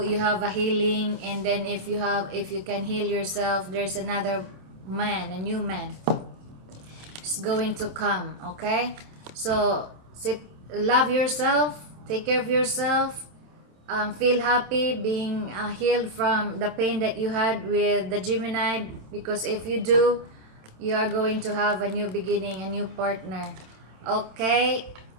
you have a healing. And then if you can heal yourself, there's another man, a new man is going to come. Okay, so love yourself, take care of yourself, feel happy being healed from the pain that you had with the Gemini, because if you do, you are going to have a new beginning, a new partner. Okay,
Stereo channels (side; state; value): left; late; 27 ms